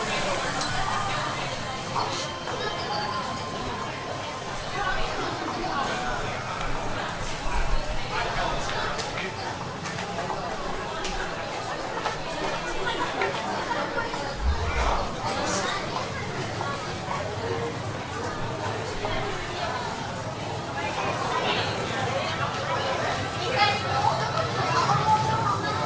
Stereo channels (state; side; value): identical; both; correlation 1.00